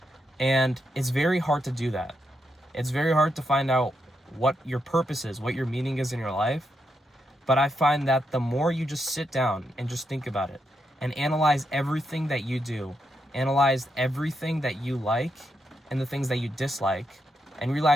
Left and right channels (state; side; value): normal; both; correlation 0.82